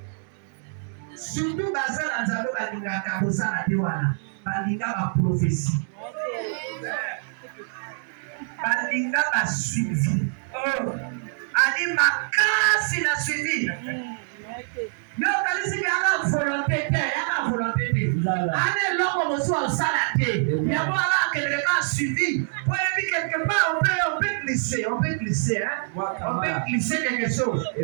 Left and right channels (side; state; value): left; silent; digital silence